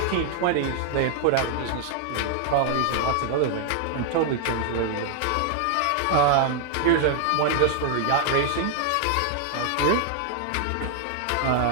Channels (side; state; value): both; different; correlation 0.00